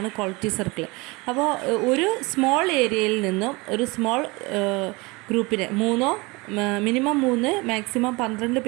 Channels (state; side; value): quieter; left; 24.9 dB